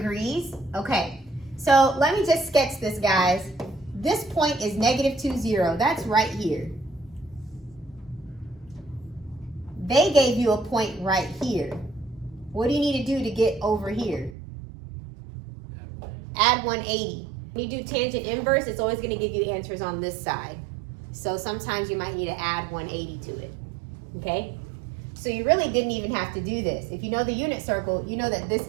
Okay, so let me just sketch this, guys. This point is -2, 0. That's right here. They gave you a point right here. What do you need to do to get over here? Add 180. When you do tangent inverse, it's always going to give you answers on this side. So sometimes you might need to add 180 to it. Okay? So you really didn't even have to do this. If you know the unit circle, you know that this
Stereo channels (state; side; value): drops out; left; at 14.4 s